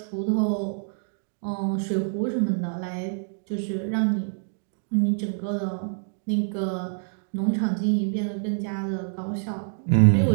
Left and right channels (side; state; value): left; silent; 61 dB below the other